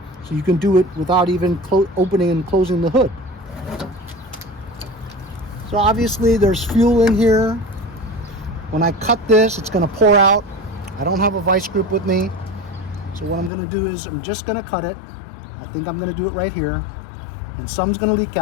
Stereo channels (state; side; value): drops out; right; at 13.5 s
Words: So you can do it without even opening and closing the hood. So obviously there's fuel in here. When I cut this, it's going to pour out. I don't have a vice grip with me. So what I'm going to do is I'm just going to cut it. I think I'm going to do it right here. And some's going to leak